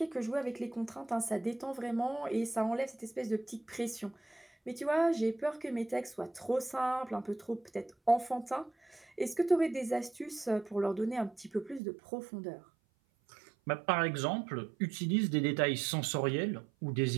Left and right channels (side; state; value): left; drops out; at 11.8 s